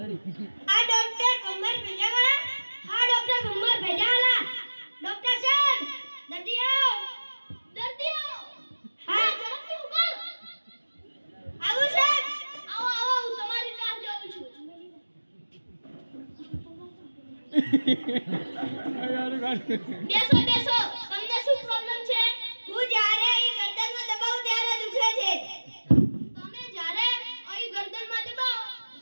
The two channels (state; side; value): inverted; both; correlation -1.00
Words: આ ડોક્ટર ભમર ભેજાવાળા. હા ડોક્ટર ભમર ભેજાવાળા. ડોક્ટર સાહેબ દર્દીઓ હા ઝડપથી ઉભા. આવું સાહેબ. આવો આવો, હું તમારી રાહ જોઉં છું. બેસો બેસો. તમને શું પ્રોબ્લેમ છે? હું જ્યારે અહીં ગરદનમાં દબાવું ત્યારે દુખે છે. તમે જ્યારે અહીં ગરદનમાં દબાવો